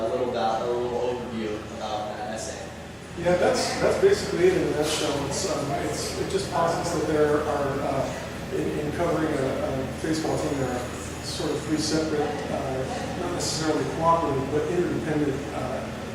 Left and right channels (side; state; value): both; identical; correlation 1.00